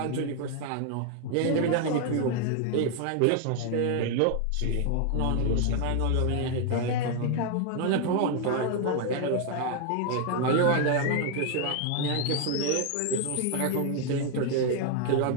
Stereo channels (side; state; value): both; different; correlation 0.00